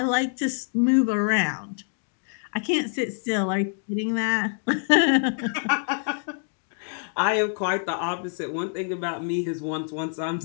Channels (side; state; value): right; silent; digital silence